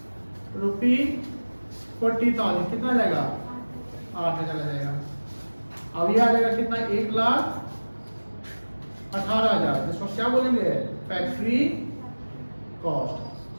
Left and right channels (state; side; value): inverted; both; correlation -1.00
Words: ₹40,000 कितना आ जाएगा? 8,000 आ जाएगा। अब ये आ जाएगा कितना? 1,18,000। इसको क्या बोलेंगे? Factory cost.